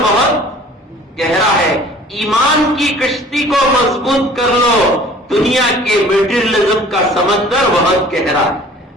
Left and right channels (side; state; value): both; normal; correlation 0.49